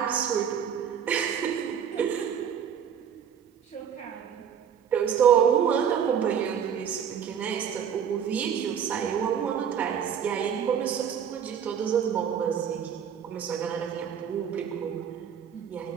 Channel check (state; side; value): quieter; left; 8.1 dB